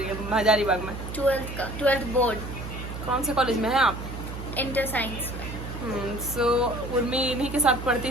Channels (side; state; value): right; noise; hum, 8 dB below the sound